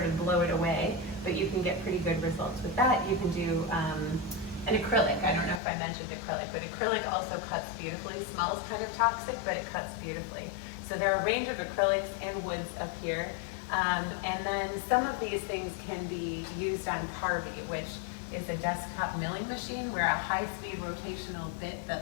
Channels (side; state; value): right; drops out; at 5.6 s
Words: of blow it away, but you can get pretty good results with that. You can do an acrylic. I don't know if I mentioned acrylic, but acrylic also cuts beautifully. Smells kind of toxic, but it cuts beautifully. So there are a range of acrylics and woods up here. And then some of these things can be used on Carvey, which is a desktop milling machine where a high-speed rotational bit